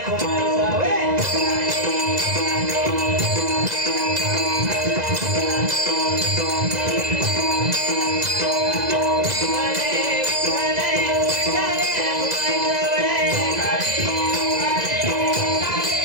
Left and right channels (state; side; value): late; left; 2.0 ms